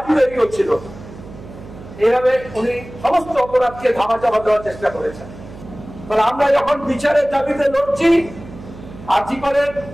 তৈরি হচ্ছিল। এইভাবে উনি সমস্ত অপরাধকে ধামাচাপা দেওয়ার চেষ্টা করেছেন। তাহলে আমরা যখন বিচারের দাবিতে লড়ছি, আর্জিকরের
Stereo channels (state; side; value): noise; right; hum, 16 dB below the sound